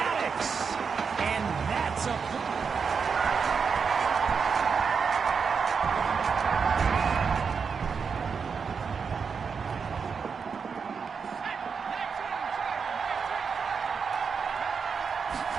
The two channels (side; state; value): left; quieter; 5.8 dB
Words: And that's a...